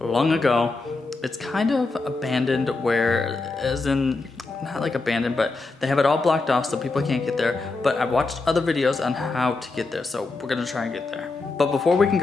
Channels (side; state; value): right; quieter; 3.6 dB